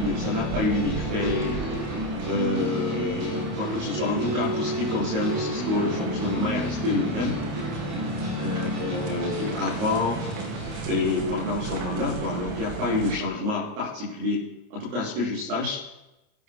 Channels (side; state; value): left; late; 28 ms